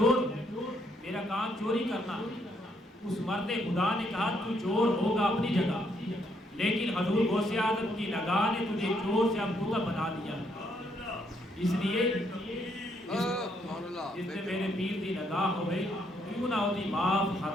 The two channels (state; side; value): normal; both; correlation 0.72